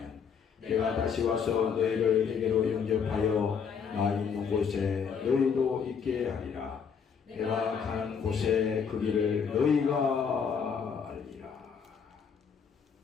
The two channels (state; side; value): quieter; right; 6.6 dB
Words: 내가 다시 와서 너희를 내게로 영접하여 나 있는 곳에 너희도 있게 하리라. 내가 가는 곳에 그 길을 너희가 알리라.